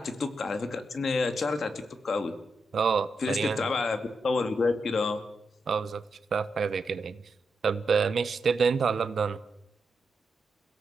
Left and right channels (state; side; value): normal; both; correlation 0.85